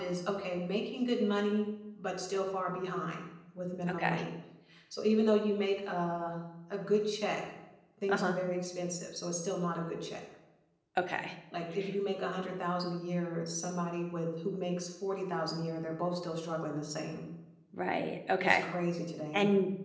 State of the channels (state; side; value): identical; both; correlation 1.00